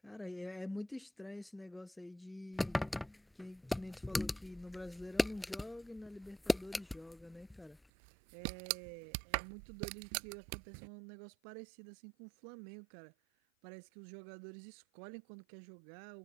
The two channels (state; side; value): drops out; left; at 7.8 s